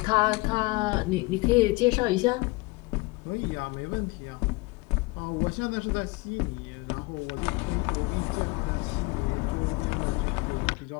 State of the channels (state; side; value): quieter; right; 23.9 dB